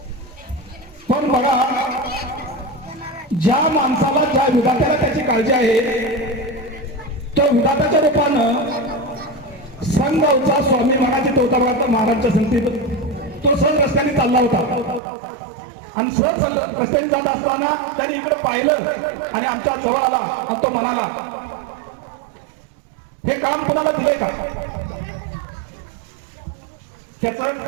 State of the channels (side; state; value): left; drops out; at 15.0 s